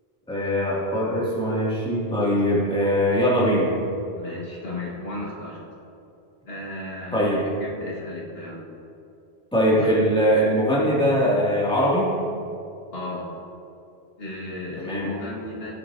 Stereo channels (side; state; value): both; normal; correlation 0.15